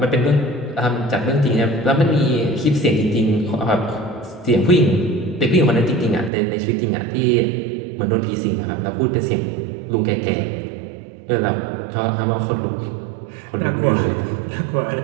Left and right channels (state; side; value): drops out; left; at 6.3 s